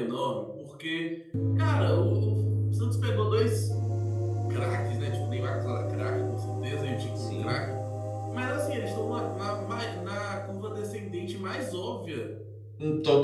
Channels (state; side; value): identical; both; correlation 1.00